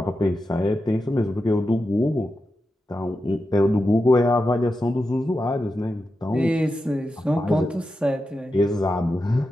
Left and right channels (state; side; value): normal; both; correlation 0.89